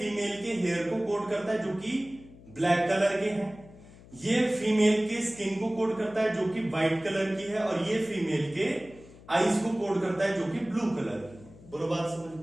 के हेयर को कोड करता है जो कि ब्लैक कलर के हैं, ये फीमेल के स्किन को कोड करता है जो कि व्हाइट कलर की है, और ये फीमेल के आईज को कोड करता है जो कि ब्लू कलर की है। बोलो बात समझ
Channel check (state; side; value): noise; left; hum, 21 dB below the sound